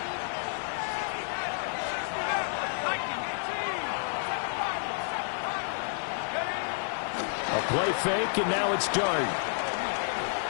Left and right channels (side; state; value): right; silent; 58 dB below the other